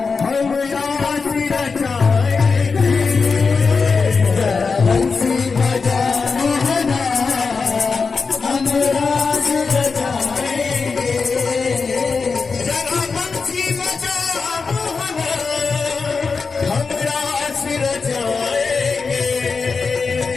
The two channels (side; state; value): right; quieter; 4.8 dB